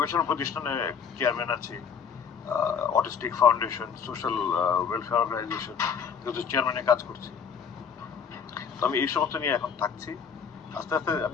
প্রতিষ্ঠানে চেয়ারম্যান আছি, autistic foundation, social welfare organisation, চেয়ারম্যানে কাজ করছি। তো আমি এই সমস্ত নিয়ে এখন থাকছি। আস্তে আস্তে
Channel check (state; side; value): quieter; right; 6.8 dB